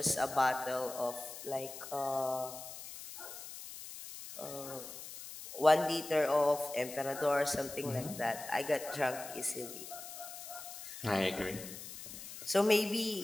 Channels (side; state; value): left; noise; hiss, 11 dB below the sound